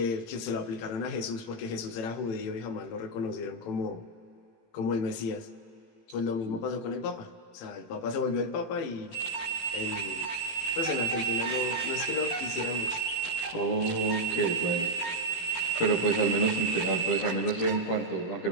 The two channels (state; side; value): late; right; 17 ms